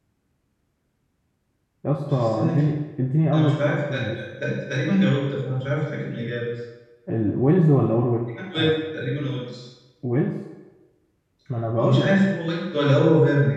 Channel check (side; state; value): both; identical; correlation 1.00